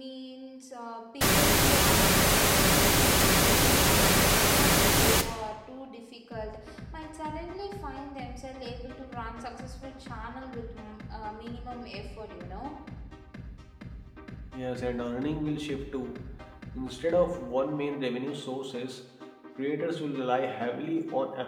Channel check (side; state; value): both; identical; correlation 1.00